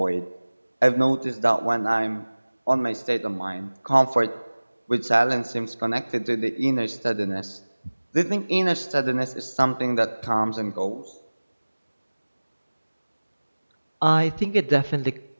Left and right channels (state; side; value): inverted; both; correlation -1.00